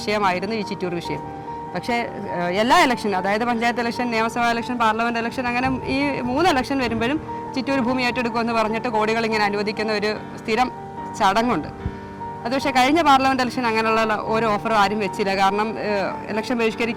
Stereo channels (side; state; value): both; identical; correlation 1.00